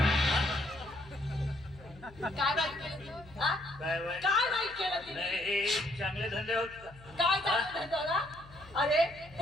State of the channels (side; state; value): left; noise; hum, 21 dB below the sound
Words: काय नाही केलं तू? हा? काय काय नाही केलं तिने? नाही, हे चांगले धंदे होत का? काय चांगलं धंदा ना? अरे